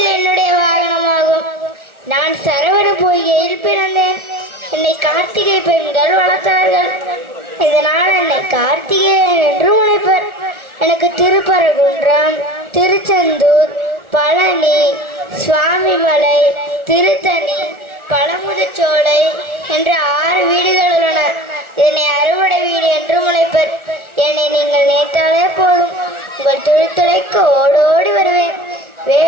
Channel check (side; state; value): left; late; 1.4 ms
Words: என்னுடைய வாகனமாகும். நான் சரவண பொய்கையில் பிறந்தேன். என்னை கார்த்திகை பெண்கள் வளர்த்தார்கள். இதனால் என்னை கார்த்திகேயன் என்று உழைப்பர். எனக்கு திருப்பரங்குன்றம், திருச்செந்தூர், பழனி, சுவாமிமலை, திருத்தணி, பழமுதிர்ச்சோலை என்ற 6 வீடுகள் உள்ளன. இதனை அறுவடை வீடு என்று உழைப்பர். என்னை நீங்கள் நினைத்தாலே போதும், உங்கள் தொழில்துறைக்கு ஓடோடி வருவேன்.